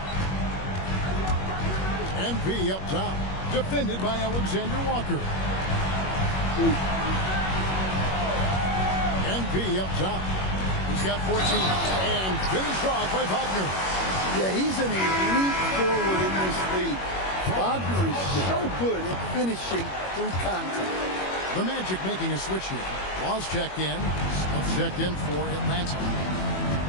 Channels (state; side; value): late; right; 21 ms